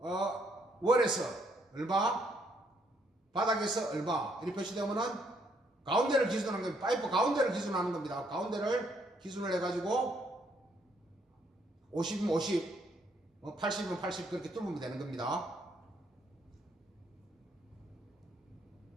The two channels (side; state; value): both; normal; correlation 0.71